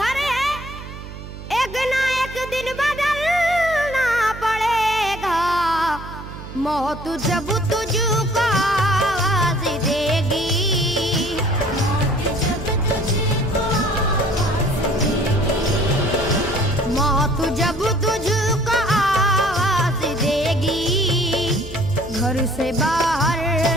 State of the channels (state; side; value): noise; right; hum, 12 dB below the sound